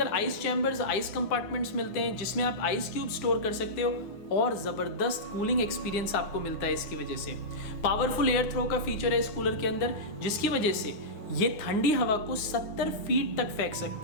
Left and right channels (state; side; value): late; right; 9.7 ms